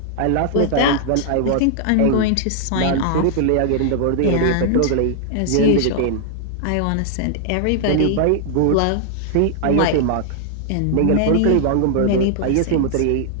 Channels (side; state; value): both; different; correlation 0.00